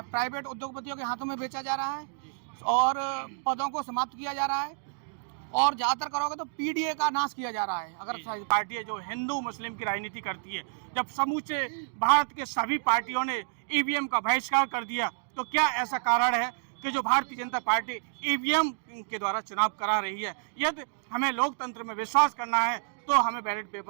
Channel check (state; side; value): silent; left; digital silence